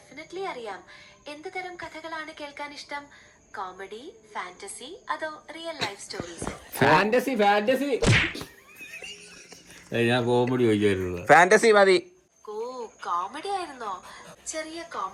അറിയാം. എന്ത് തരം കഥകളാണ് കേൾക്കാൻ ഇഷ്ടം? കോമഡി, ഫാന്റസി, അതോ റിയൽ ലൈഫ് സ്റ്റോറീസ്? ഫാന്റസി. ഞാൻ കോമഡി ചോദിക്കാറുള്ളത്. ഫാന്റസി മതി. ഓ, കോമഡി ആയിരുന്നോ? ചെറിയ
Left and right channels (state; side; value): identical; both; correlation 1.00